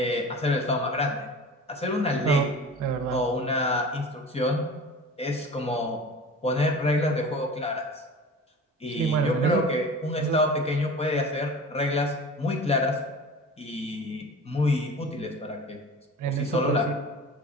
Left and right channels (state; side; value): normal; both; correlation 0.37